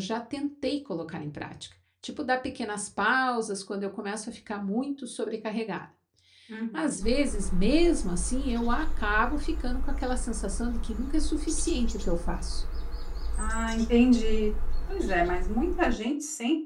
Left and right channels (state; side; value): identical; both; correlation 1.00